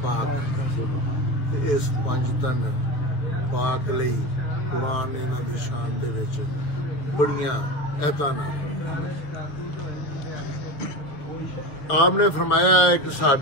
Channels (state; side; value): late; right; 7.0 ms